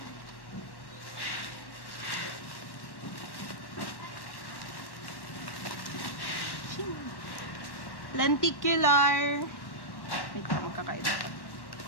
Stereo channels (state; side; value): late; right; 1.1 ms